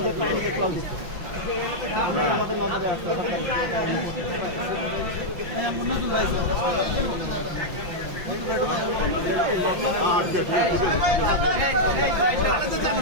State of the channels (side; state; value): left; late; 5.8 ms